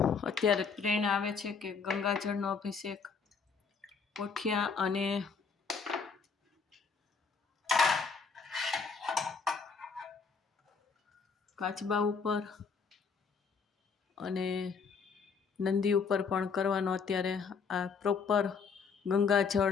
અત્યારે પ્રેરણા આવે છે કે ગંગાજળનો અભિષેક કોઠિયા અને કાચબા ઉપર અને નંદી ઉપર પણ કરવાનો. અત્યારે આ પ્રોપર ગંગાજળ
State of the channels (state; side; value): quieter; right; 5.4 dB